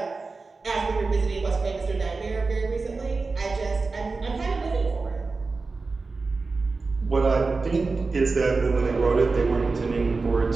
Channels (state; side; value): quieter; left; 4.0 dB